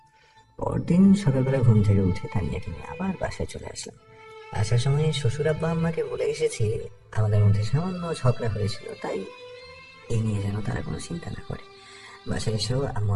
পরদিন সকালবেলা ঘুম থেকে উঠে তানিয়াকে নিয়ে আবার বাসায় চলে আসলাম। আসার সময় শ্বশুর আব্বা আম্মাকে বলে এসেছি আমাদের মধ্যে সামান্য ঝগড়া হয়েছিল, তাই এই নিয়ে যেন তারা কোনো চিন্তা না করে। বাসায় এসেও আম্মু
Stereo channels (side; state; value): both; identical; correlation 1.00